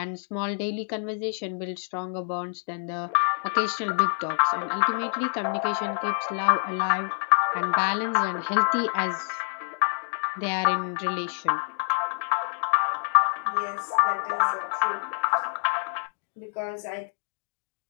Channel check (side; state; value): right; silent; digital silence